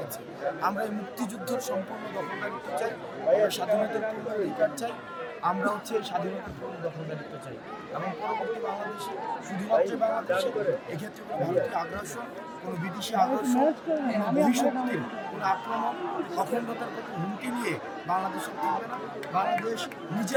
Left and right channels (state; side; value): identical; both; correlation 1.00